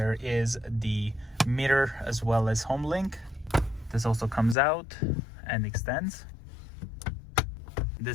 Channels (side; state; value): right; drops out; at 4.5 s